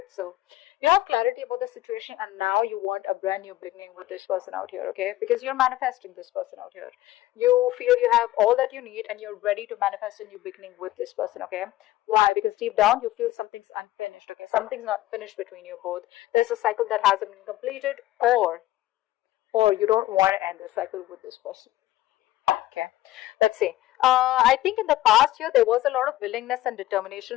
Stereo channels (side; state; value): right; quieter; 15.7 dB